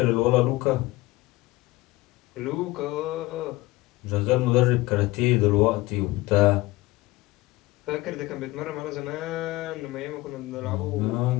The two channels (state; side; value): quieter; right; 19.7 dB